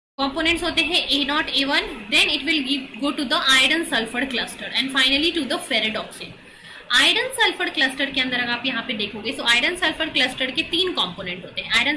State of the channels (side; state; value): both; identical; correlation 1.00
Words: कंपोनेंट्स होते हैं A0 A1, then it will go to the iron sulphur cluster and finally to the ferredoxin. Iron sulphur cluster के अंदर अगर आप यहाँ पे देखोगे, सो आयरन सल्फर क्लस्टर के 3 कंपोनेंट होते हैं। Iron